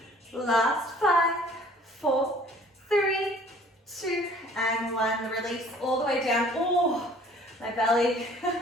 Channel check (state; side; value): normal; both; correlation 0.53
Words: Last 5, 4, 3, 2, and 1. Release all the way down. Oh, my belly.